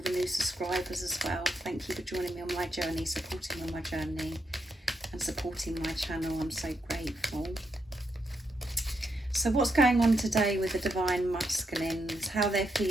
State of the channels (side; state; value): both; normal; correlation 0.81